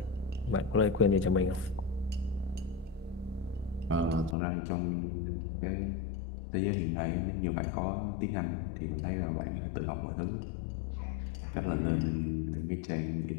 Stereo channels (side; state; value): right; drops out; at 4.4 s